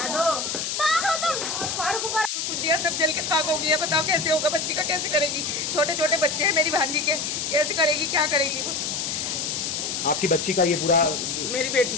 दिया सब जल के खाक हो गया। बताओ कैसे होगा, बच्ची का कैसे करेगी? छोटे छोटे बच्चे हैं मेरी भांजी के, कैसे करेगी, क्या करेगी? आपकी बच्ची का ये पूरा मेरी बेटी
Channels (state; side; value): noise; left; hiss, 2 dB below the sound